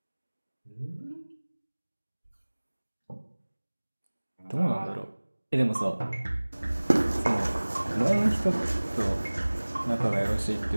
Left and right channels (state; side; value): inverted; both; correlation -1.00